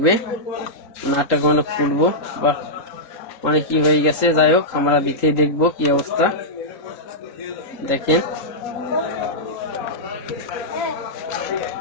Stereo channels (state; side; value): late; right; 3.8 ms